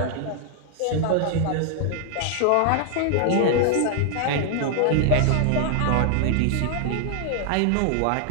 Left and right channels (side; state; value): both; different; correlation 0.00